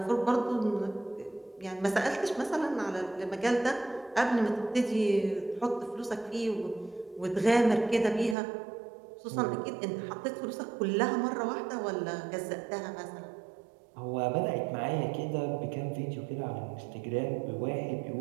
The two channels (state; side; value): drops out; left; at 8.3 s